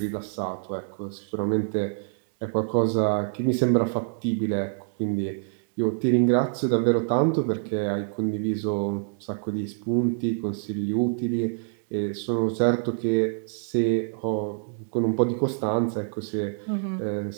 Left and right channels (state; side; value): silent; left; digital silence